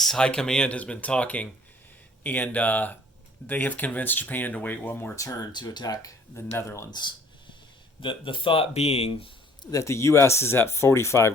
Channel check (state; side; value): normal; both; correlation 0.56